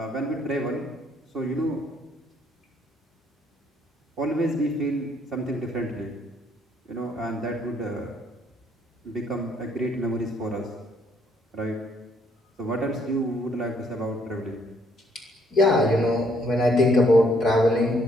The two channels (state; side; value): normal; both; correlation 0.68